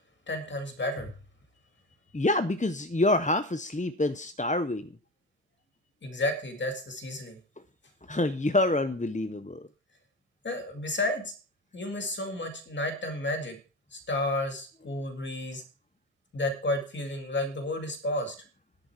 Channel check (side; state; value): both; normal; correlation 0.26